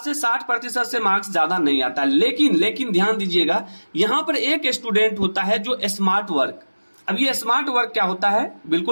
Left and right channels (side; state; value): both; inverted; correlation -1.00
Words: से 60% से मार्क्स ज्यादा नहीं आता। लेकिन ध्यान दीजिएगा, यहां पर एक स्टूडेंट होता है जो स्मार्ट वर्क। अब ये स्मार्ट वर्क क्या होता है,